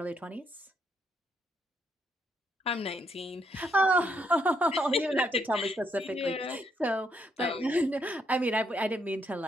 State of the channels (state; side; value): normal; both; correlation 0.74